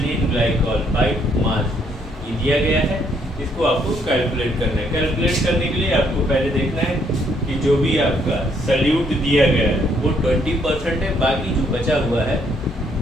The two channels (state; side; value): normal; both; correlation 0.69